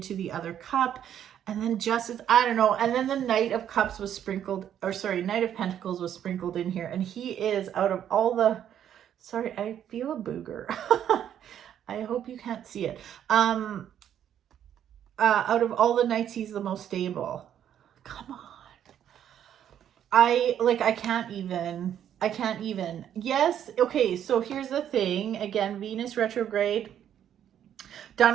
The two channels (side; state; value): left; quieter; 9.9 dB